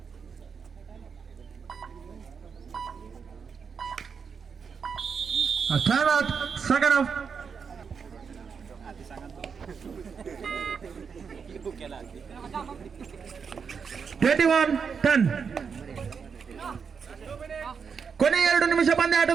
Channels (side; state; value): left; quieter; 6.1 dB